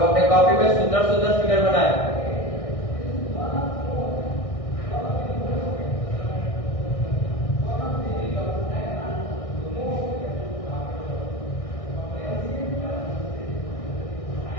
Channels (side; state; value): right; late; 1.6 ms